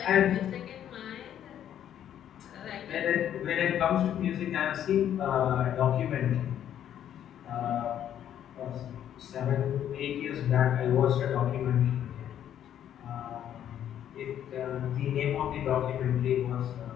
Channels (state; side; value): quieter; right; 10.4 dB